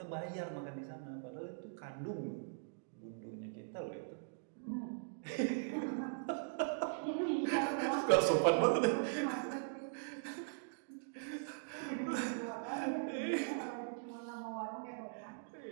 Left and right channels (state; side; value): silent; left; digital silence